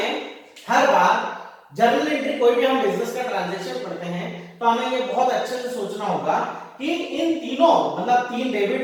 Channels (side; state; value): both; identical; correlation 1.00